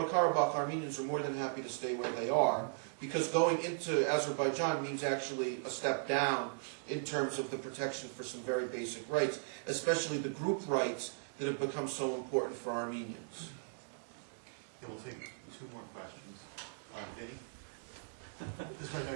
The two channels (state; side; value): silent; left; digital silence